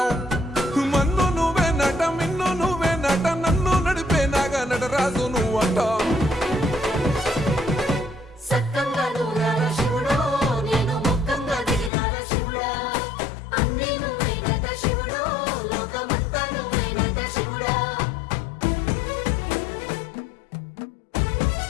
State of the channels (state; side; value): drops out; right; at 11.9 s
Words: మన్ను నువ్వే నట మిన్ను నువ్వే నట నన్ను నడిపే నాగా నటరాజు నువ్వంట